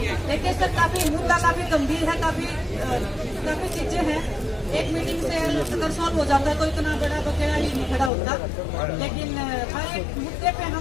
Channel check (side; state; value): right; drops out; at 8.1 s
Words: देखिए सर काफी मुद्दा काफी गंभीर है, काफी चीजें हैं। एक मीटिंग से अगर सॉल्व हो जाता है तो इतना बड़ा बकेड़ा ही नहीं खड़ा होता, लेकिन हर एक मुद्दे पे